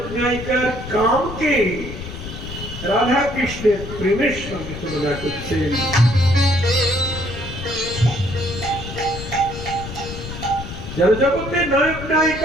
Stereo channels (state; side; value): noise; left; rumble, 10 dB below the sound